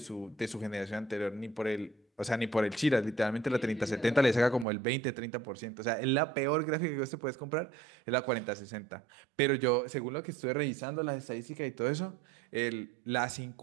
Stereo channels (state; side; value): drops out; left; at 4.7 s